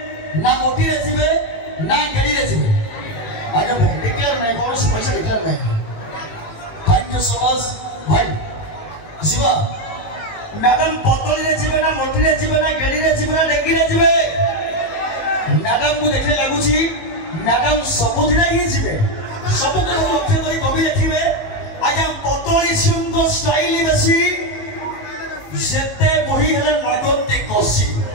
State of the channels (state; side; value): late; right; 19 ms